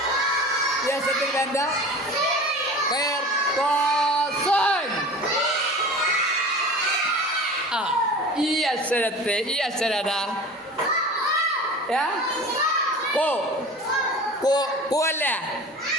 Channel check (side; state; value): both; normal; correlation 0.37